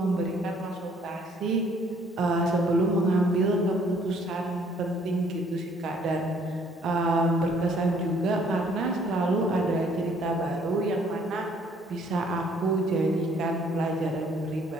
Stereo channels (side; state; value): both; normal; correlation 0.62